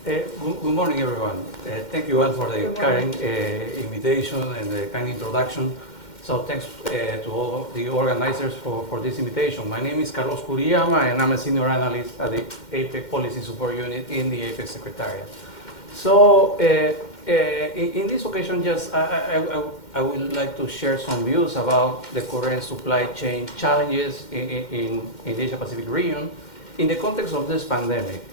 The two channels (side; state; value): right; late; 2.1 ms